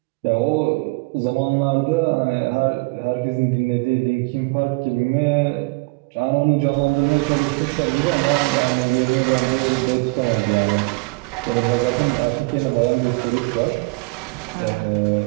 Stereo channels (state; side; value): quieter; left; 27.6 dB